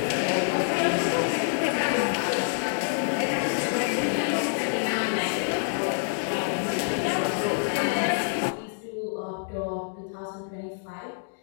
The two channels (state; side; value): silent; right; digital silence